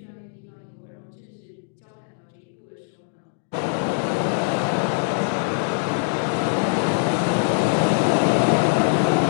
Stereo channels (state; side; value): silent; right; digital silence